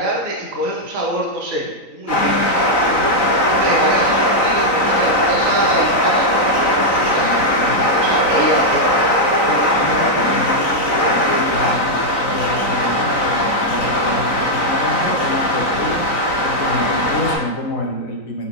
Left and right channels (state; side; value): late; right; 3.9 ms